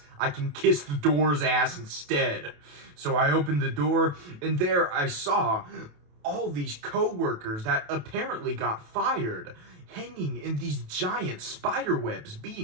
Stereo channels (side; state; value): left; late; 28 ms